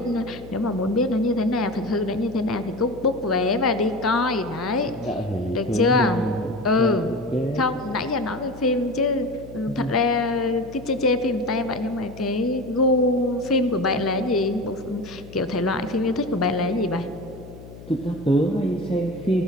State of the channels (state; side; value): noise; left; hum, 17 dB below the sound